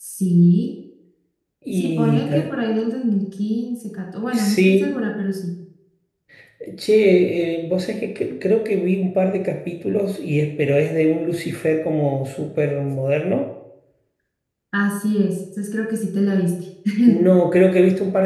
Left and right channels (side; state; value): both; identical; correlation 1.00